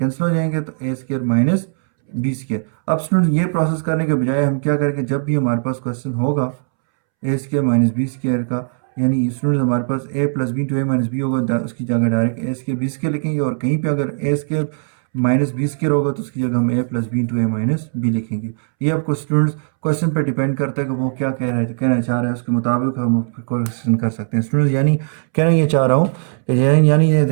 हो जाएंगे, तो ए स्केयर माइनस बी स्केयर। अब स्टूडेंट ये प्रोसेस करने के बजाय हम क्या करेंगे, जब भी हमारे पास क्वेश्चन होगा A square minus B square का, यानी स्टूडेंट्स हमारे पास A plus B to A minus B होगा, उसकी जगह direct A square B square लिखेंगे, और कहीं पे अगर A square minus B square होगा तो उसकी जगह हम A plus B into A minus B लिखेंगे। ये आपको स्टूडेंट्स क्वेश्चन पे डिपेंड करता है कि वो क्या कहना चाह रहे हैं, उसके मुताबिक हम क्वेश्चन कर सकते हैं स्टूडेंट्स। यानी कहना ये चाह रहा हूँ कि यानी ये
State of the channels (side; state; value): left; silent; 67 dB below the other